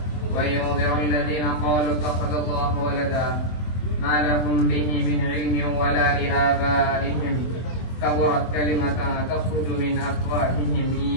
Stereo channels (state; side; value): late; right; 23 ms